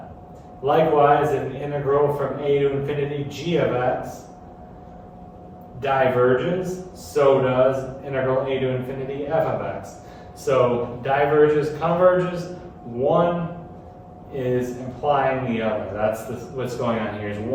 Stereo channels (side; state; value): both; identical; correlation 1.00